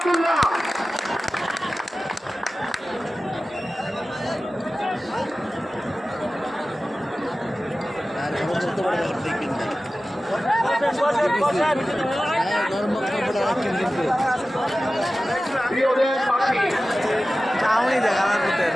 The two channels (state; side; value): normal; both; correlation 0.95